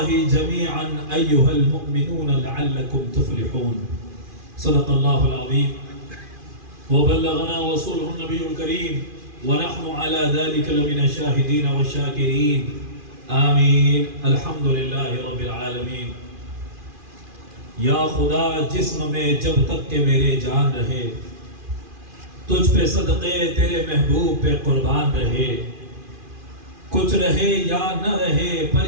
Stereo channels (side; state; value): left; late; 2.4 ms